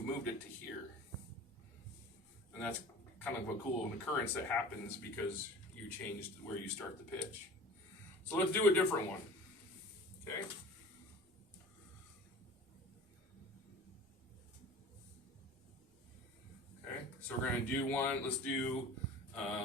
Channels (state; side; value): normal; both; correlation 0.40